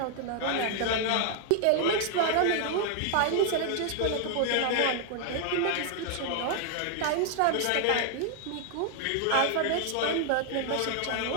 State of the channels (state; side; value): different; both; correlation 0.00